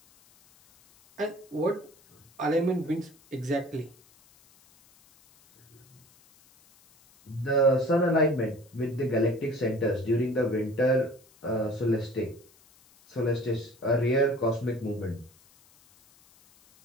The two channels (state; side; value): noise; left; hiss, 29 dB below the sound